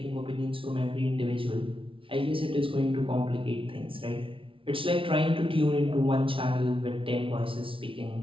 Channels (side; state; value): left; late; 0.25 ms